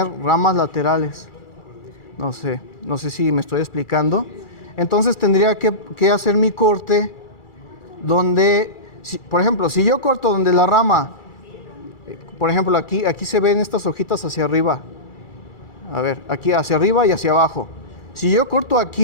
ramas laterales. No sé si me estoy explicando. Entonces tendría que hacer mi corte donde, por ejemplo, si yo corto donde la rama, por ejemplo, aquí se ven estas hojitas hacia arriba. A ver, aquí hacia arriba y hacia abajo. Si yo corto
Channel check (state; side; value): late; right; 2.4 ms